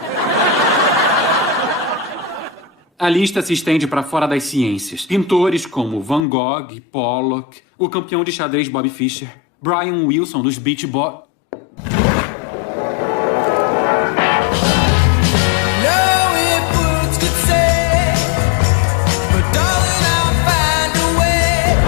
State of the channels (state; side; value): drops out; right; at 6.2 s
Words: A lista se estende para fora das ciências. Pintores como Van Gogh, Pollock, o campeão de xadrez Bob Fischer, Brian Wilson dos Beach Boys.